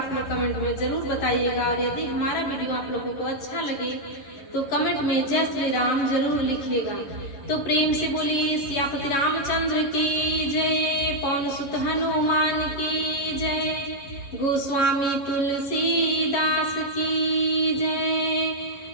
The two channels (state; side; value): late; right; 11 ms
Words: लोग कमेंट में जरूर बताइएगा। और यदि हमारा वीडियो आप लोगों को अच्छा लगे तो कमेंट में जय श्री राम जरूर लिखिएगा। तो प्रेम से बोलिए सियापति रामचंद्र की जय, पवन सुत हनुमान की जय, गोस्वामी तुलसीदास की जय,